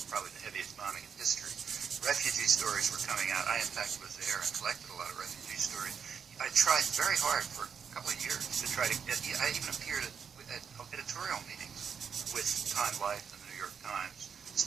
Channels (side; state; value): left; quieter; 6.8 dB